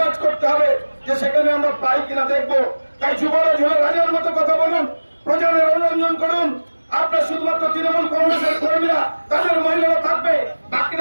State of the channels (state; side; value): inverted; both; correlation -1.00